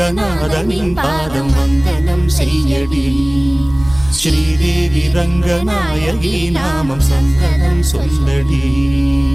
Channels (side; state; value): right; noise; hum, 17 dB below the sound